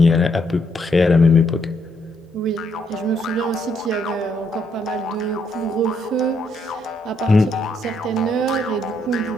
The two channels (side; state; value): both; normal; correlation 0.74